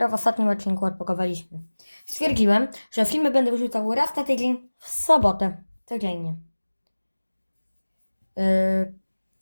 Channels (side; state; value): both; inverted; correlation -1.00